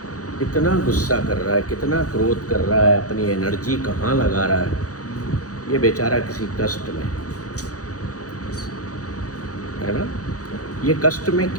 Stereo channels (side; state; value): right; late; 0.67 ms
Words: कितना गुस्सा कर रहा है, कितना क्रोध कर रहा है, अपनी एनर्जी कहाँ लगा रहा है, ये बेचारा किसी कष्ट में है ना। ये कष्ट में